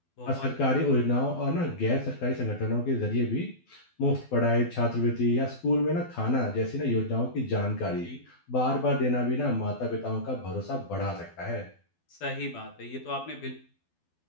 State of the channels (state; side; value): late; right; 12 ms